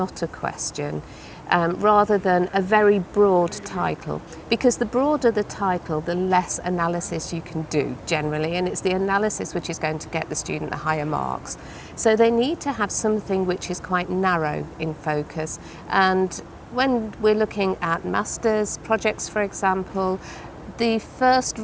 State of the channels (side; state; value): both; identical; correlation 1.00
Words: a question, rather than a very broad title. Because the broader the title, the less analysis you can do generally, and it's the analysis which is going to get the student the higher marks. So they need to have something which is quite narrow in focus. And when we're looking at master's projects, for example, the first